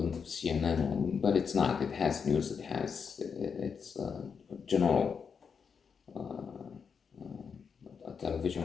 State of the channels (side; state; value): right; quieter; 6.2 dB